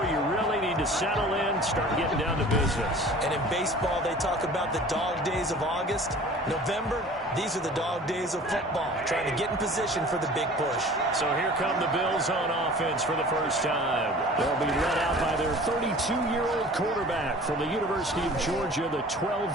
you really need to settle in, start getting down to business. And in baseball, they talk about the dog days of August. November, these are the dog days of football, trying to get in position for the big push. So here come the Bills on offense for the first time. They'll be led out by their 32-year-old quarterback from the University of Georgia, the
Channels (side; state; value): both; normal; correlation 0.44